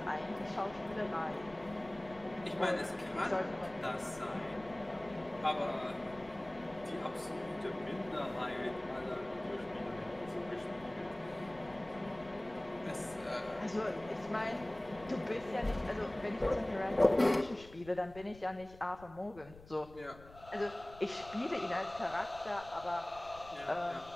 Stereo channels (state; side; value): noise; left; rumble, 20 dB below the sound